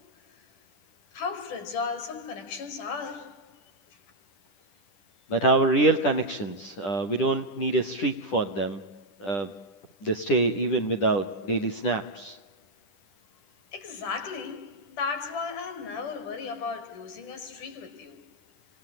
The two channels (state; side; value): late; right; 10 ms